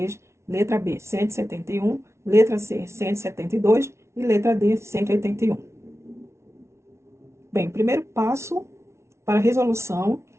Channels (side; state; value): left; late; 0.13 ms